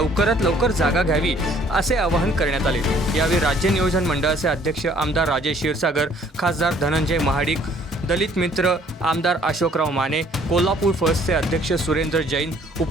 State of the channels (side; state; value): both; normal; correlation 0.59